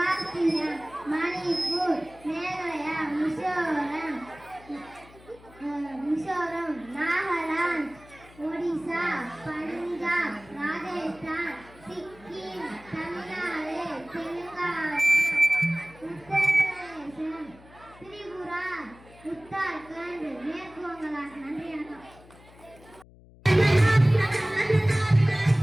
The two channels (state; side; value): noise; left; hum, 23 dB below the sound